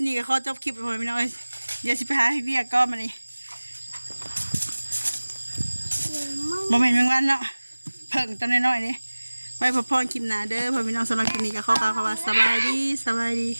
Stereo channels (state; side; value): inverted; both; correlation -1.00